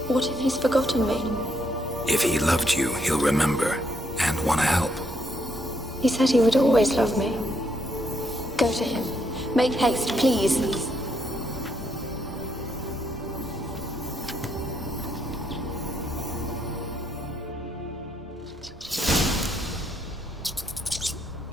What if he's forgotten me? If he loved you, he'll remember, and want to help. He said he would always love me. Go to him. Make haste, please.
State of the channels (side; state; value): both; normal; correlation 0.75